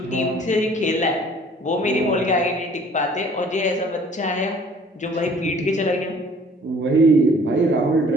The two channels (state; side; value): normal; both; correlation 0.53